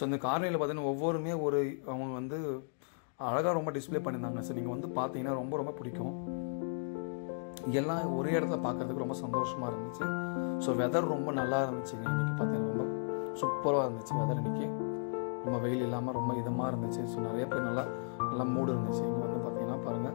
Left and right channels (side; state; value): right; silent; digital silence